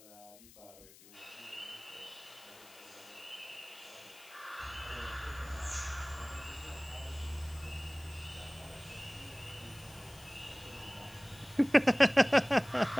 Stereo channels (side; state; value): left; noise; hiss, 21 dB below the sound